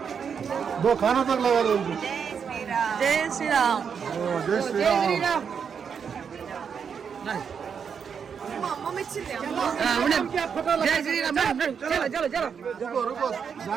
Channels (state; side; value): quieter; left; 6.8 dB